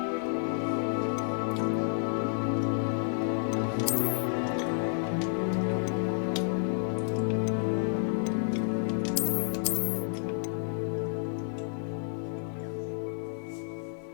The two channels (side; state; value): right; silent; digital silence